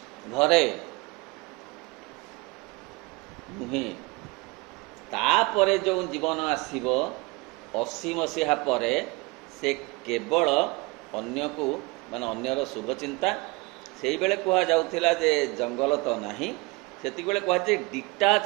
ଘରେ ନୁହେଁ। ତାପରେ ଯେଉଁ ଜୀବନ ଆସିବ 80 ମସିହା ପରେ, ସେ କେବଳ ଅନ୍ୟକୁ ମାନେ ଅନ୍ୟର ଶୁଭଚିନ୍ତା। ସେଇବେଳେ କୁହାଯାଉଥିଲା ଯେ ଜଙ୍ଗଲ ତ ନାହିଁ, ସେତିକିବେଳେ କୁହାଯାଏ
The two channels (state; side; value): quieter; left; 24.8 dB